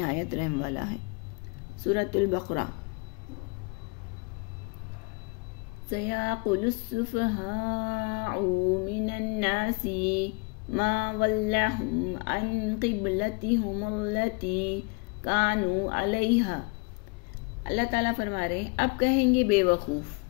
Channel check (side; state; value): right; quieter; 31.0 dB